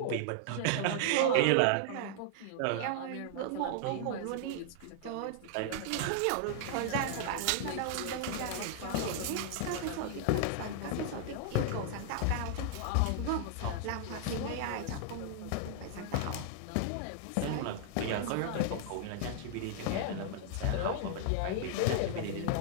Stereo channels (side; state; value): both; different; correlation -0.01